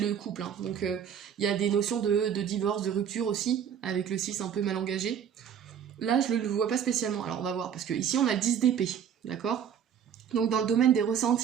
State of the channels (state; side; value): quieter; left; 8.4 dB